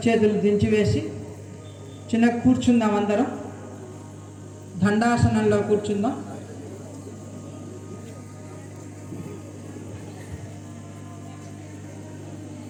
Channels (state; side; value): identical; both; correlation 1.00